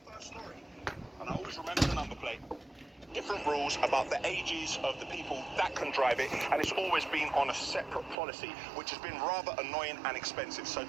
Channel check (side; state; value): left; drops out; at 8.2 s